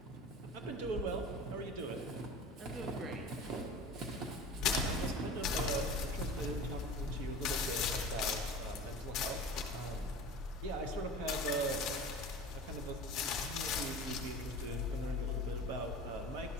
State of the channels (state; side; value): normal; both; correlation 0.36